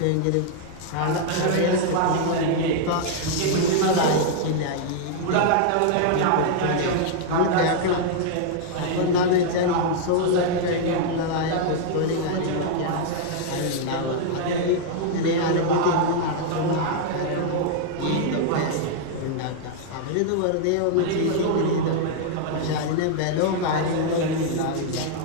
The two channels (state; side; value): different; both; correlation -0.01